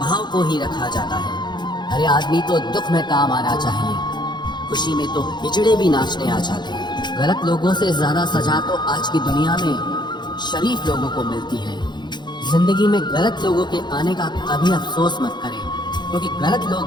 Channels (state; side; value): late; right; 0.21 ms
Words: को ही रखा जाता है। हर आदमी तो दुख में काम आना चाहिए, खुशी में तो हिजड़े भी नाचने आ जाते हैं। गलत लोगों से ज्यादा सजा तो आज की दुनिया में शरीफ लोगों को मिलती है। जिंदगी में गलत लोगों के आने का कभी अफसोस मत करें, क्योंकि गलत